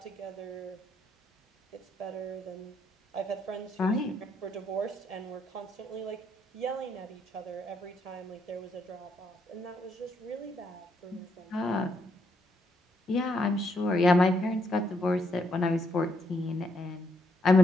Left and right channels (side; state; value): both; normal; correlation 0.74